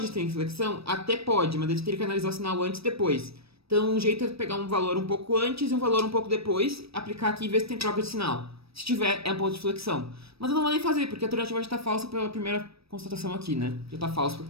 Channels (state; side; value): late; left; 0.77 ms